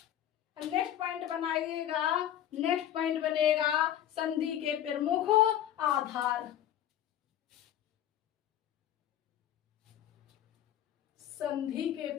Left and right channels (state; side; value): quieter; right; 11.3 dB